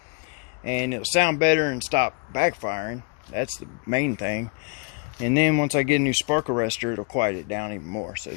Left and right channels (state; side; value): quieter; right; 34.7 dB